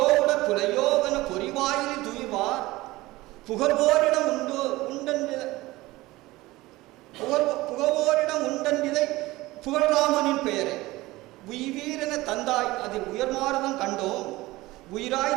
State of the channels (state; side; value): quieter; left; 19.2 dB